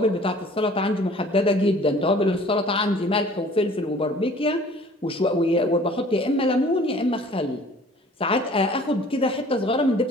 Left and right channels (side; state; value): both; normal; correlation 0.51